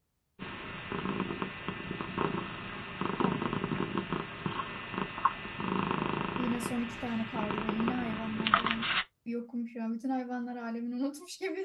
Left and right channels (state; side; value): identical; both; correlation 1.00